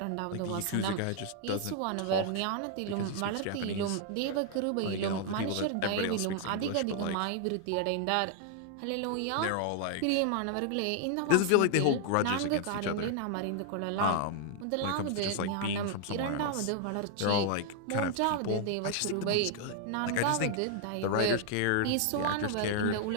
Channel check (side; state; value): both; different; correlation 0.00